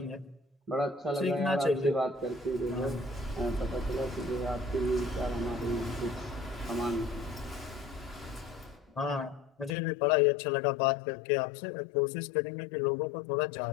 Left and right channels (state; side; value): drops out; right; at 9.8 s